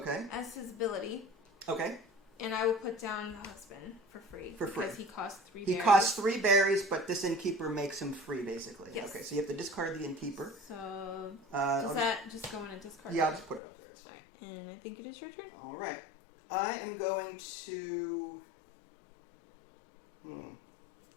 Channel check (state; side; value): drops out; right; at 13.6 s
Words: as his ability. Okay. And I will put down the husband for free. For free. Because he costs 3 He berries. costs 3 berries, but this innkeeper makes him free, basically. Yes. Okay, so you have to discard the innkeeper. So, I'll does that just go in and discard? Yeah, I'll just put it up there. It's fine. And I think it is your turn. All right. I am going to...